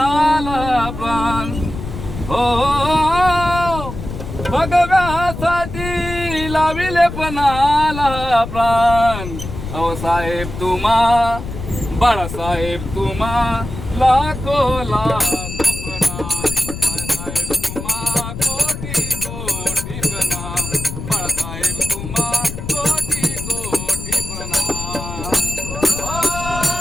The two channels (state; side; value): noise; left; rumble, 8 dB below the sound